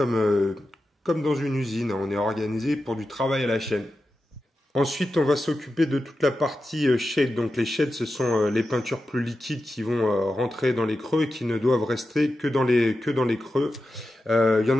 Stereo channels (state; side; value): normal; both; correlation 0.91